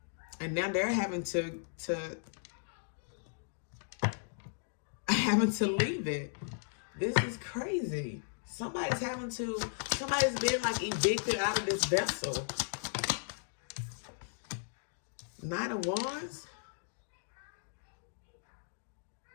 and now they're having to leave it. This is crazy. Somebody's being like evicted out of this vessel. Nine of Wands.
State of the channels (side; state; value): right; silent; digital silence